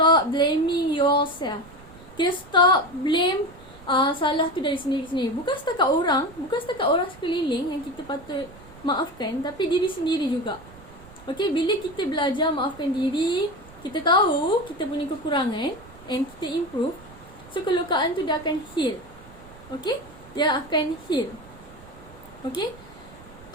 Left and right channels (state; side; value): noise; right; rumble, 21 dB below the sound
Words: blaming yourself. Okay, stop blame salah tu dari sendiri-sendiri. Bukan setakat orang sekeliling yang kita patut maafkan, tapi diri sendiri juga. Okay, bila kita belajar maafkan diri, kita tahu kita punya kekurangan and kita improve. So, kelukaan tu dia akan heal. Okay, dia akan heal. Okay,